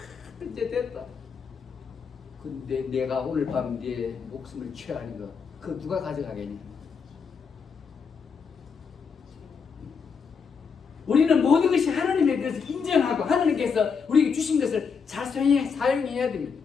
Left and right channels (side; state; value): right; quieter; 5.9 dB